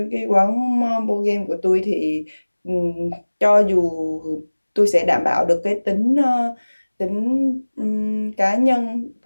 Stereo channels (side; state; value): both; inverted; correlation -1.00